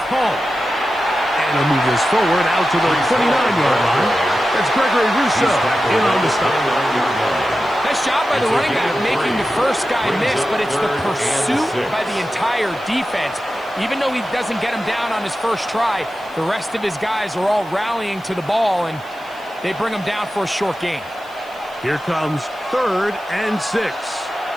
Hall. And he'll move this forward out to the 29-yard line. That's Gregory Rousseau in on the stop. Nice job by the running back making the first guy miss, but it's the pursuit by the entire defense. Even though he doesn't get him down on his first try, the rest of his guys are all rallying to the ball, and they bring him down for a short gain. Here comes 3rd and 6.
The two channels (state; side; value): noise; right; hiss, 27 dB below the sound